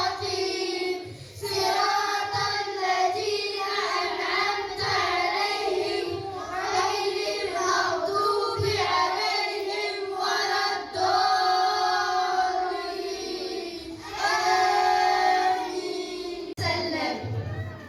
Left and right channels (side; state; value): both; identical; correlation 1.00